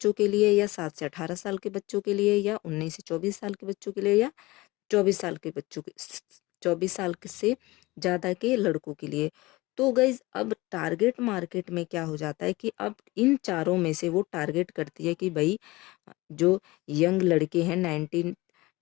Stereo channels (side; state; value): right; quieter; 21.1 dB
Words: के लिए या 7 से 18 साल के बच्चों के लिए या 19 से 24 साल के बच्चों के लिए या 24 साल के बच्चों के 24 साल से ज़्यादा के लड़कों के लिए। तो गाइज अब टारगेट मार्केट में क्या हो जाता है कि अब इन चारों में से वो टारगेट करती है कि भाई जो यंग लड़के हैं 19